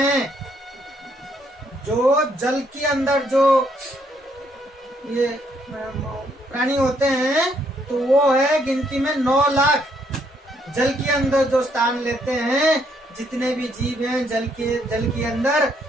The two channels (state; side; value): normal; both; correlation 0.71